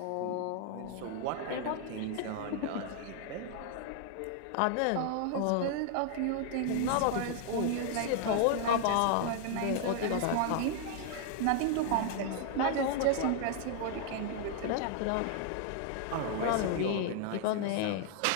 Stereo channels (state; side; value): different; both; correlation 0.00